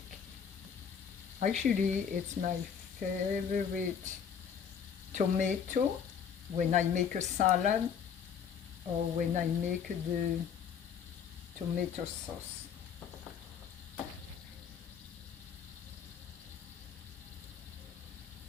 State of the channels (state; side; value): quieter; right; 7.4 dB